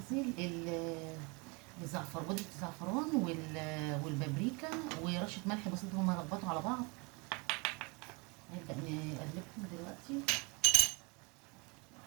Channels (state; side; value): quieter; left; 29.6 dB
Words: الزعفر، بودره الزعفران والبابريكا ورشه ملح بسيطه، هما يربطوا على بعض. نبدا نقلبهم دلوقتي